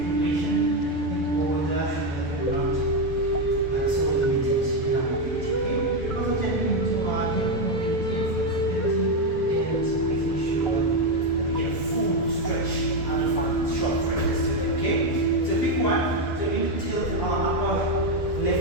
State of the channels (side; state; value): right; late; 7.0 ms